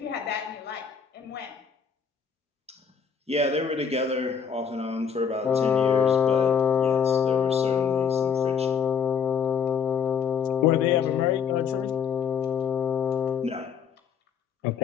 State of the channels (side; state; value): right; quieter; 6.8 dB